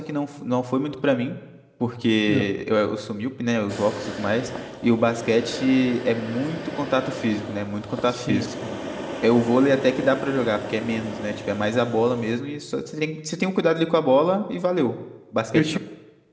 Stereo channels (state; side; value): identical; both; correlation 1.00